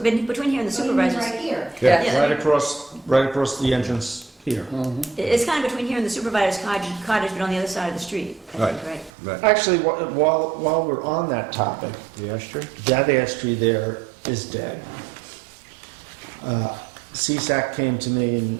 between here and the Oh, you mean supervisors. right here? Yeah. Yeah. Right across the entrance here. It's kind of between here and the supervisor's cottage, but on the other side of the street. I think, right? Right. Actually, while we're on that topic, The ash tree? that ash tree there is dead. CSAC came to me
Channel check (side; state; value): left; drops out; at 9.1 s